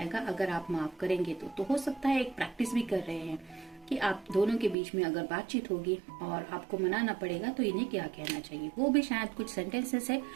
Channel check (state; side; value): drops out; left; at 4.8 s